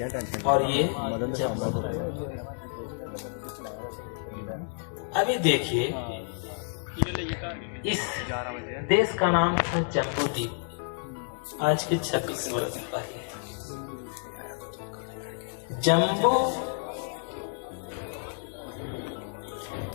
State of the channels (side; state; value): right; silent; 58 dB below the other